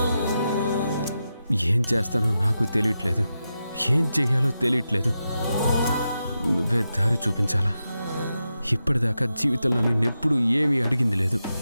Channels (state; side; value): inverted; both; correlation -0.89